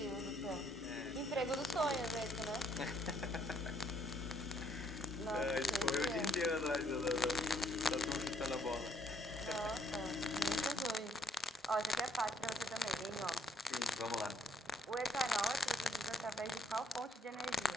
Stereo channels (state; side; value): normal; both; correlation 0.68